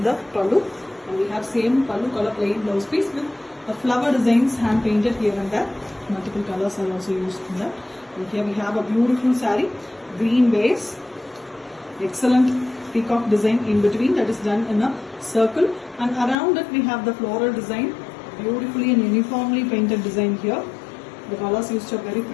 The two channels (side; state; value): right; drops out; at 16.4 s